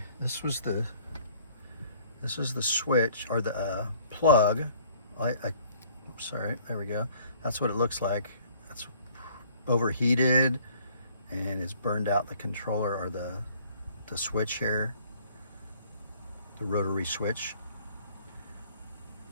this was the switch, or the plug. Sorry, there we go. That's what it looks like. That's overheated and it's burned out the controller, or the switch here, the rotary switch.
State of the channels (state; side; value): inverted; both; correlation -0.57